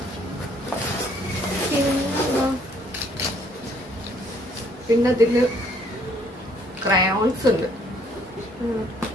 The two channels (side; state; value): both; normal; correlation 0.63